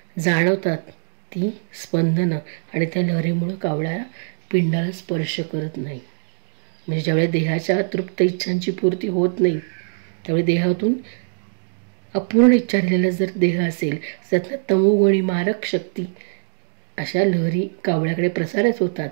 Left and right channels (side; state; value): left; silent; digital silence